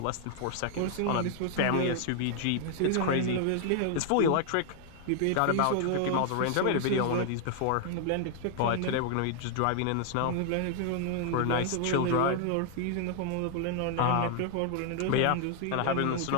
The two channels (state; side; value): different; both; correlation 0.00